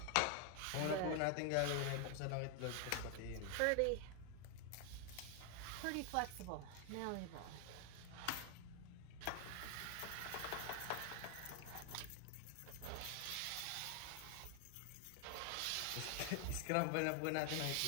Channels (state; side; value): different; both; correlation 0.00